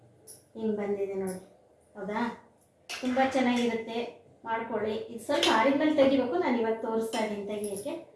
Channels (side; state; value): both; identical; correlation 1.00